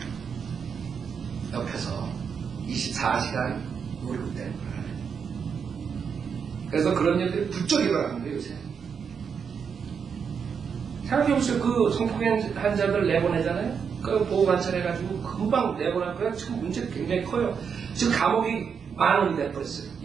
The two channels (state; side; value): quieter; left; 6.6 dB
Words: 옆에서 24시간 노리고 있다는 거예요. 그래서 그런 일들이 부쩍 일어나는 거예요, 요새. 생각해보세요. 그 성폭행 환자들 내보내잖아요? 그 보호관찰해가지고 금방 내보낼 거예요. 지금 문제가 굉장히 커요. 지금 감옥이 10,000원이 돼버렸어요.